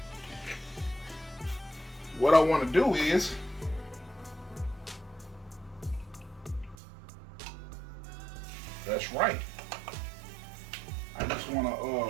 What I want to do is that's right. I just want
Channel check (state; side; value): drops out; left; at 6.8 s